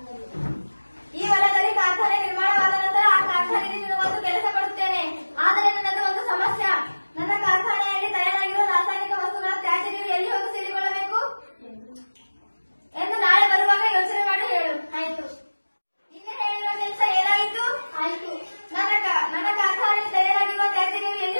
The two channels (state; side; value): inverted; both; correlation -1.00